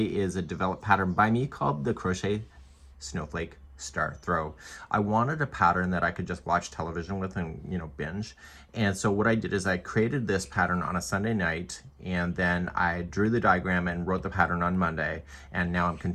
is a developed pattern by me called the Crochet Snowflake Star Throw. I wanted a pattern that I could just watch television with and, binge. And so what I did is I created this pattern on a Sunday night, and then I drew the diagram and wrote the pattern on Monday, and now I'm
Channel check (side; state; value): both; identical; correlation 1.00